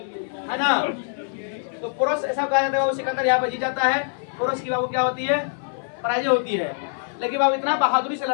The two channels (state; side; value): silent; right; 58 dB below the other